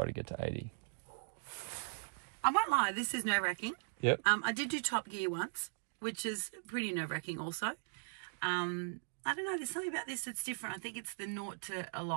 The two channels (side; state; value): left; silent; digital silence